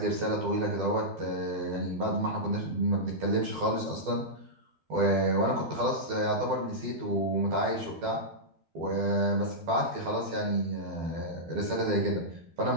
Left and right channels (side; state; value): left; late; 12 ms